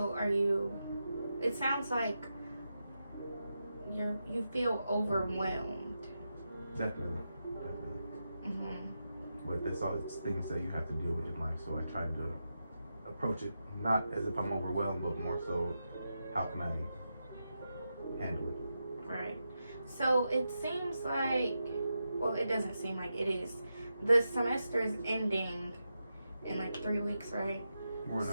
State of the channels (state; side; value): inverted; both; correlation -0.88